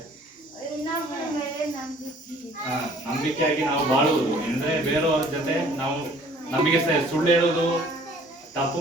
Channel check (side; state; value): both; normal; correlation 0.54